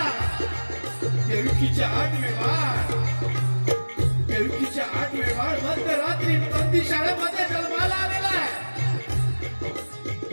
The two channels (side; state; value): both; inverted; correlation -1.00